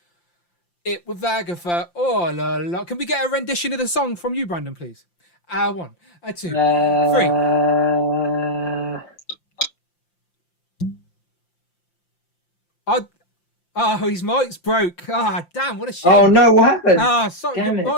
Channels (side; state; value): right; late; 5.8 ms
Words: It with Agatha. Oh, la, la. Can we get a rendition of the song from you, Brandon, please? 1, 2, 3. His mic's broke. Damn, what a shame. Oh no, what happened? Sorry, your